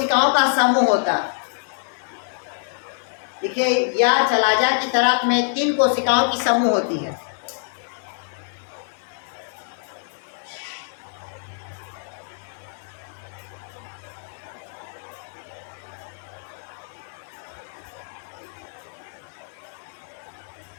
का समूह होता है। देखिए, या चलाजा की तरफ में 3 कोशिकाओं की समूह होती है।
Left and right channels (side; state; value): right; silent; 62 dB below the other